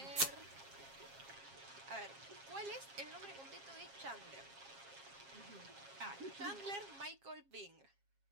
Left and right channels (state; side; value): late; left; 7.4 ms